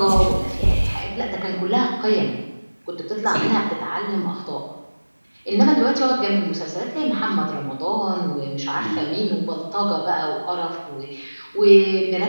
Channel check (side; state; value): both; inverted; correlation -1.00